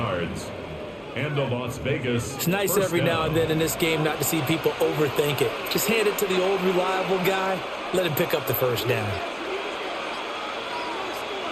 And the Las Vegas. It's nice every now and then in this game not to see people overthink it. Just hand it to the old reliable guy. Let him pick up the first down.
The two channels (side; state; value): both; identical; correlation 1.00